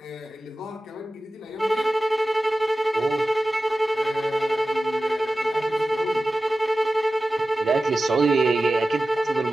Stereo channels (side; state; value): both; normal; correlation 0.95